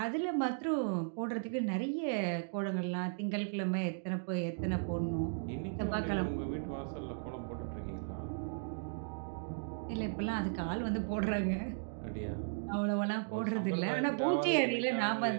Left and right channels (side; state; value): left; silent; digital silence